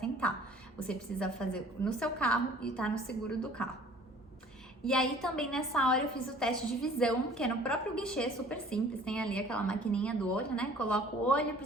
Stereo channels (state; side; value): normal; both; correlation 0.51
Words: Você precisa fazer no seu carro e estar no seguro do carro. E aí também nessa hora eu fiz o teste de visão, que é no próprio guichê, super simples, tem ali aquela maquininha do olho, né? Coloco o olho,